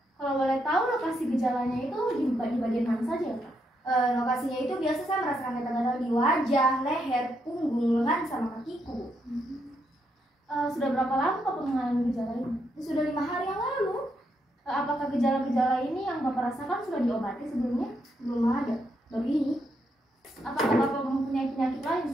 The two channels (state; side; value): normal; both; correlation 0.79